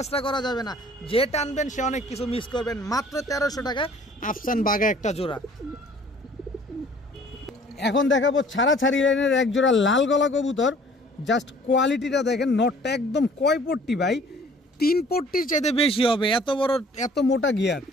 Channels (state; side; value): normal; both; correlation 0.53